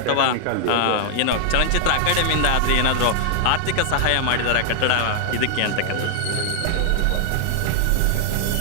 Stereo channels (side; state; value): both; different; correlation 0.00